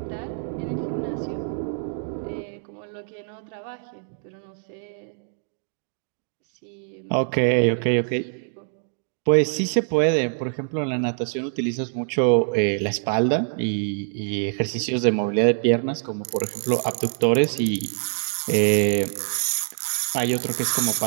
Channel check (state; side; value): silent; left; digital silence